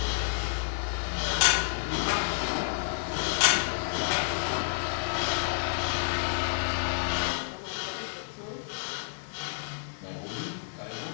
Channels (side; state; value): right; silent; digital silence